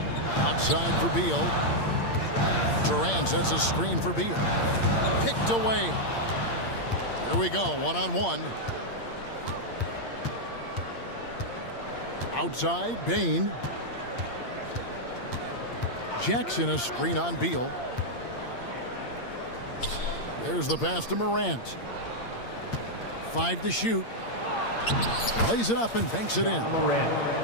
Outside for Beal. Durant sets a screen for Beal. Picked away. Here we go, 1-on-1. Outside, Bain. Jackson a screen on Beal. There's the pass to Morant. 5 to shoot. Lays it up and banks it in.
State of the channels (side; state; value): right; late; 8.7 ms